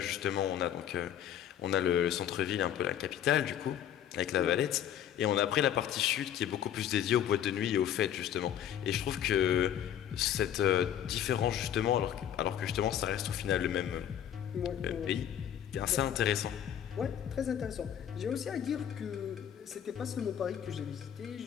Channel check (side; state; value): right; quieter; 10.1 dB